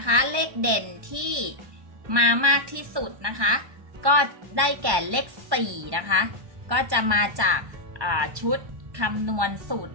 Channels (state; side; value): late; left; 1.1 ms